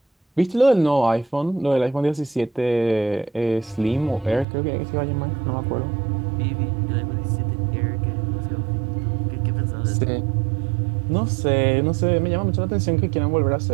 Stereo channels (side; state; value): left; drops out; at 4.5 s